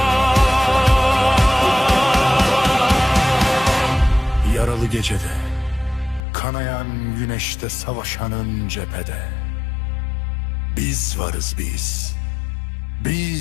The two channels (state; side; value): drops out; right; at 6.2 s